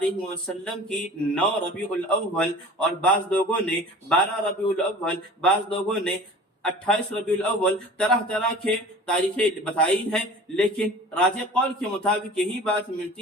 وسلم کی 9 ربیع الاول، اور بعض لوگوں نے 12 ربیع الاول، بعض لوگوں نے 28 ربیع الاول، طرح طرح کے تاریخیں بتائی ہیں، لیکن راجح قول کے مطابق یہی بات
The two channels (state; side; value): normal; both; correlation 0.41